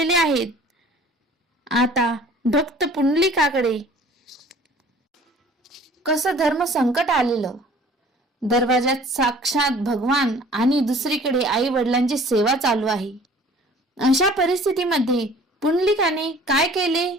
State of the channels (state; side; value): normal; both; correlation 0.50